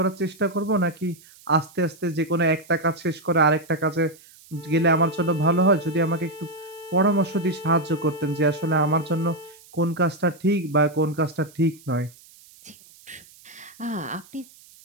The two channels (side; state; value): right; noise; hiss, 24 dB below the sound